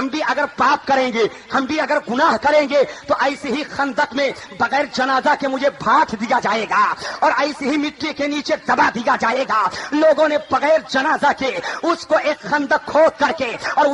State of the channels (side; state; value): both; identical; correlation 1.00